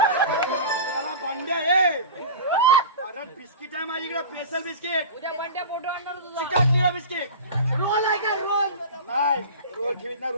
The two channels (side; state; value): both; inverted; correlation -0.31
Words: भांड्या आहे. अरे बिस्किट आहे माझ्याकडे स्पेशल बिस्किट. चिकाटलेला बिस्किट. रोल आहे का रोल नाही रोल ठेवीत ना.